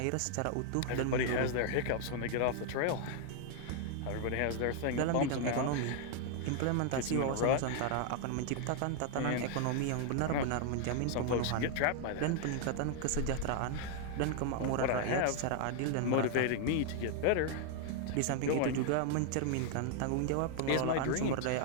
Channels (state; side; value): different; both; correlation 0.00